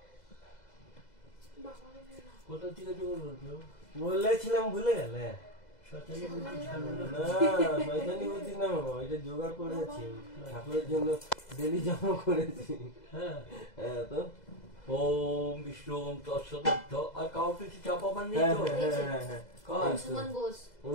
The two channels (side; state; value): right; late; 2.0 ms